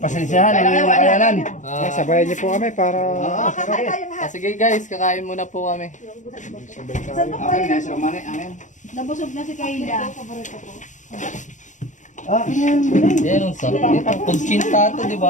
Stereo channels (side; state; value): right; late; 0.36 ms